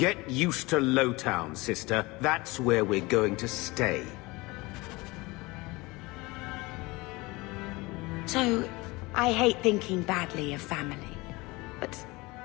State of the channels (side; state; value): right; quieter; 23.0 dB